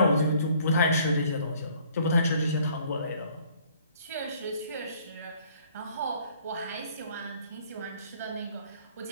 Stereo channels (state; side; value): inverted; both; correlation -0.59